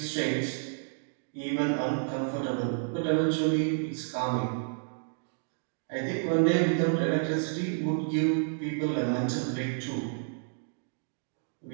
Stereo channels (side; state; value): left; silent; digital silence